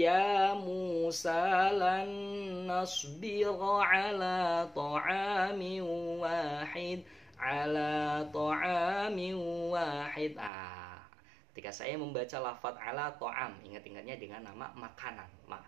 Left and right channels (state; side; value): drops out; left; at 10.5 s